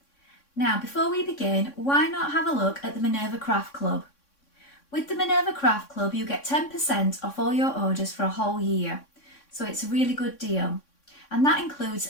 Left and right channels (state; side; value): late; right; 3.6 ms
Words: Now before we begin, why not have a look at the Minerva Craft Club? With the Minerva Craft Club you get 10% off all your orders for a whole year, so it's a really good deal, and that includes